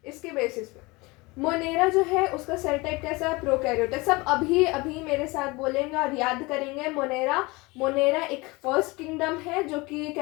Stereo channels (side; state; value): right; quieter; 24.0 dB